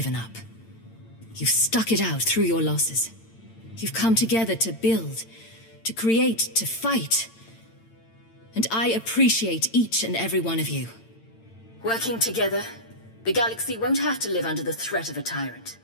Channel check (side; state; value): right; late; 8.9 ms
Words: up. You've stuck it out through your losses. You've come together to build, to create, to fight. And I appreciate each and every one of you. Working together, the galaxy won't have to live under the threat of a tyrant.